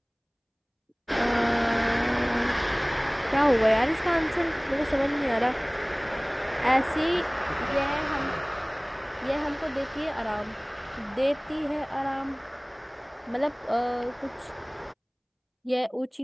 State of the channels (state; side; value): identical; both; correlation 1.00